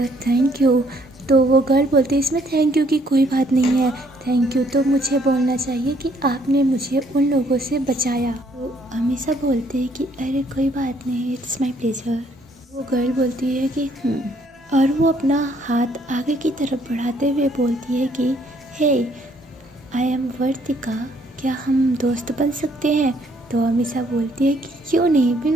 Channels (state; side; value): normal; both; correlation 0.66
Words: थैंक यू। तो वो गर्ल बोलती है इसमें थैंक यू की कोई बात नहीं है, थैंक यू तो मुझे बोलना चाहिए कि आपने मुझे उन लोगों से बचाया। तो अमीषा बोलते हैं कि अरे कोई बात नहीं, इट्स माय प्लेजर। वो गर्ल बोलती है कि और वो अपना हाथ आगे की तरफ बढ़ाते हुए बोलती है कि हे आई एम वर्तिका, क्या हम दोस्त बन सकते हैं। तो अमीषा बोलती है कि क्यों नहीं,